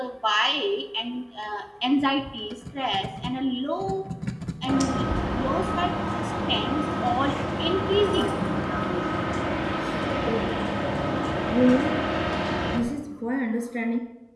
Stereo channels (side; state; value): both; identical; correlation 1.00